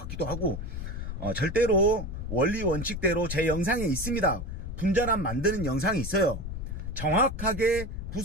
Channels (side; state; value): left; noise; rumble, 6 dB below the sound